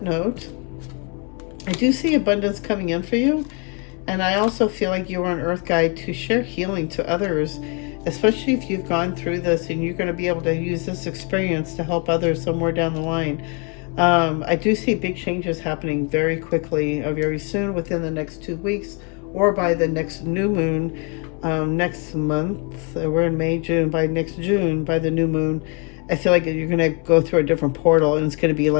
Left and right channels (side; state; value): right; quieter; 34.4 dB